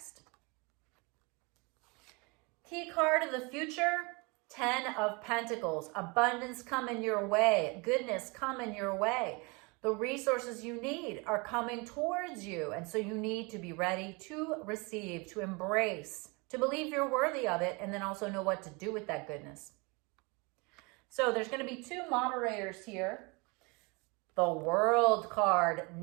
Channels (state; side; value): quieter; left; 28.6 dB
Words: Key card of the future, 10 of Pentacles. Abundance coming your way. Goodness coming your way. The resources you need are coming towards you. And so you need to be ready to receive, to embrace, to believe you're worthy of it, and then also know what to do with that goodness. So there's going to be 2 moderators here. The World card,